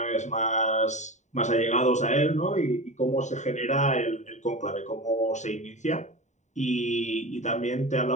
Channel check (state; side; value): late; right; 0.34 ms